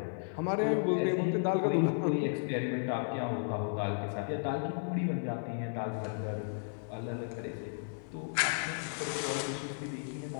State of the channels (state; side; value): silent; right; digital silence